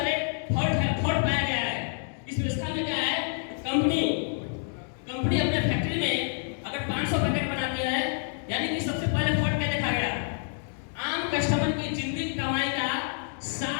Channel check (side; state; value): right; silent; digital silence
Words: फॉल्ट पाया गया है। इस व्यवस्था में क्या है, कंपनी अपने फैक्ट्री में अगर 500 पैकेट बनाती है, यानी कि सबसे पहले फॉल्ट क्या देखा गया, आम कस्टमर की जिंदगी कमाई का